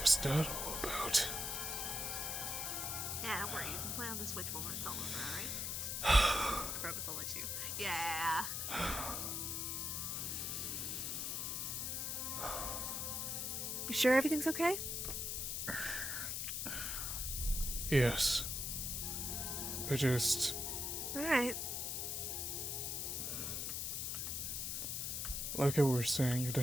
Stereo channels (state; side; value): noise; left; hiss, 1 dB below the sound